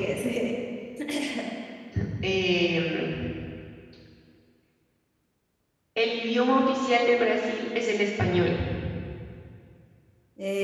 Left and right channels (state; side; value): identical; both; correlation 1.00